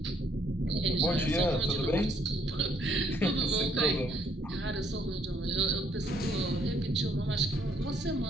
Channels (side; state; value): both; normal; correlation 0.68